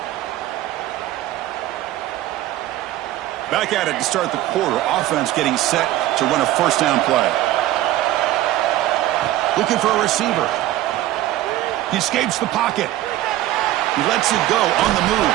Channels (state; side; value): quieter; left; 14.7 dB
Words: Back at it to start the quarter. Offense getting set to run a first down play. Looking for a receiver. He escapes the pocket. He lets it go on the move.